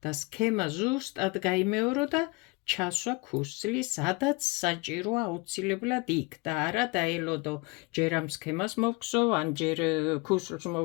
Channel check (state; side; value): quieter; right; 26.6 dB